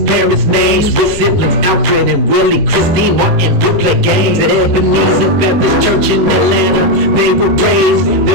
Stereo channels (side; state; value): left; late; 10 ms